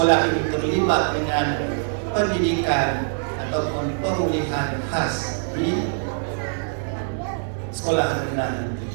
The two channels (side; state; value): left; silent; digital silence